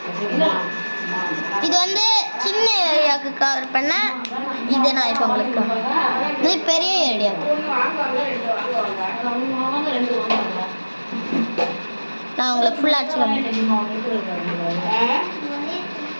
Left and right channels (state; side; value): inverted; both; correlation -1.00